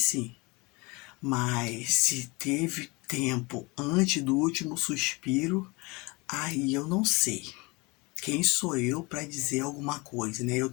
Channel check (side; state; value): right; quieter; 25.9 dB